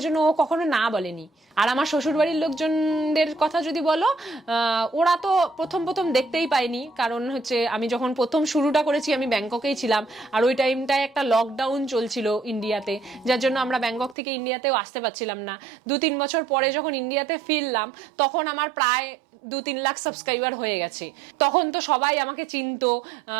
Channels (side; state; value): left; drops out; at 14.2 s